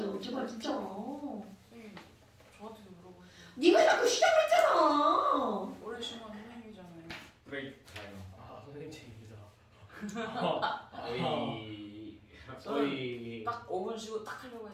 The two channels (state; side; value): identical; both; correlation 1.00